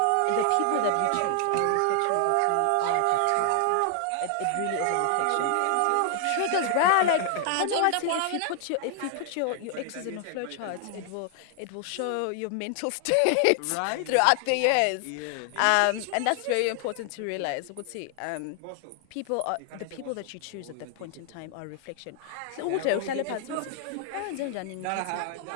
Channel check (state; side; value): different; both; correlation 0.00